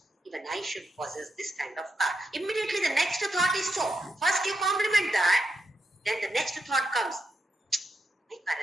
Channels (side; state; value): both; normal; correlation 0.85